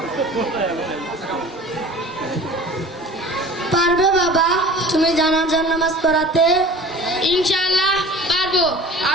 পারবে বাবা তুমি জানাজার নামাজ পড়াতে? ইনশাআল্লাহ পারবো।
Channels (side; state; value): both; normal; correlation 0.42